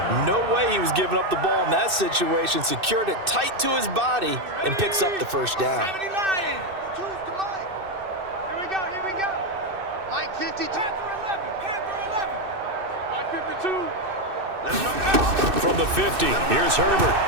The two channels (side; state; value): left; late; 2.6 ms